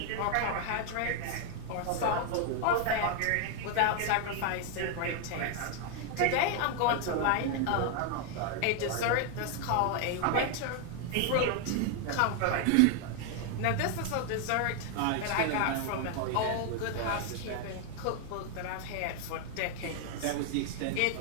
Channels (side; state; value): both; different; correlation 0.00